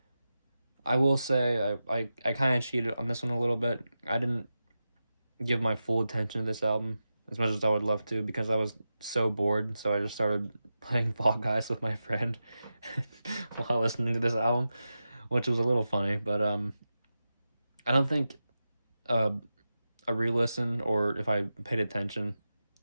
will say I kind of cheated on this one a little bit. I didn't give my full attention to this album as much as I would love to because I was so bored, so I just started playing Fall Guys with my friend while listening to this album, which was a little funny, but I don't think a re-listen or if I paid attention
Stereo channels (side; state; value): both; inverted; correlation -0.92